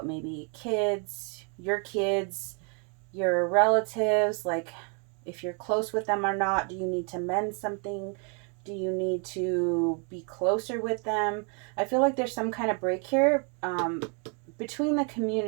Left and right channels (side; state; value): left; quieter; 37.5 dB